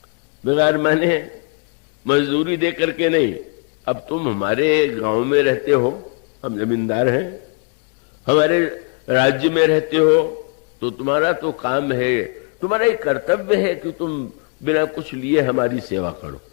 बिगार माने मजदूरी दे करके नहीं। अब तुम हमारे गांव में रहते हो, हम जमींदार हैं, हमारे राज्य में रहते हो, तो तुम्हारा तो काम है, तुम्हारा एक कर्तव्य है कि तुम बिना कुछ लिए हमारी सेवा करो।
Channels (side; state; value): right; quieter; 36.6 dB